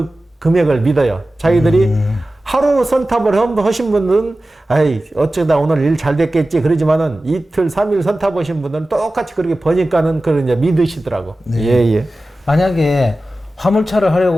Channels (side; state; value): both; normal; correlation 0.95